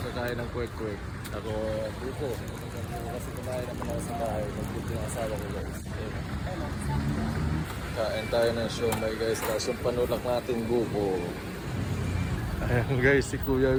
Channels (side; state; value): both; identical; correlation 1.00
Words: ng kwek-kwek. Ako buko. Kasi kumain naman ako sa bahay. Nagbuto yung asawa ko guys. Kain tayo ng siomay guys. Tapos yung panulak natin buko. Ayan guys, si Kuya